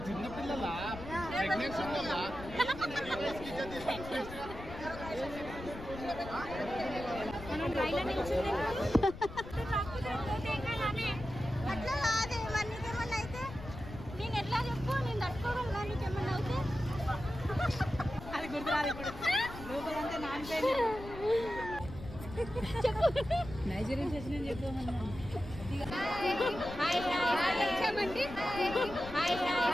చిన్నపిల్లల ప్రెగ్నెన్సీ అట్లా కాదే మరి నీకేమన్నా అయితే నేను ఎట్లా చెప్పు నేను తట్టుకోగలను కానీ నీకేమన్నా అయితే అది గుర్తురాదు ఇప్పుడు రూపదంతా నానిపోయింది నైజీరియన్ చేసిన చెప్పమన్నా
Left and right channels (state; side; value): noise; left; rumble, 12 dB below the sound